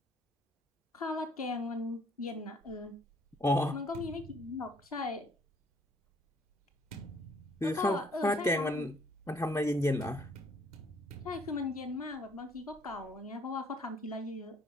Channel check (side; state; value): both; normal; correlation 0.63